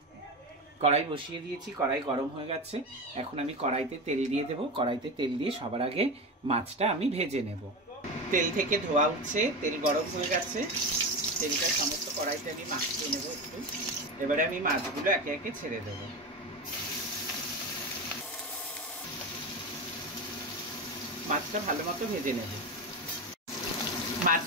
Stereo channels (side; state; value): both; normal; correlation 0.22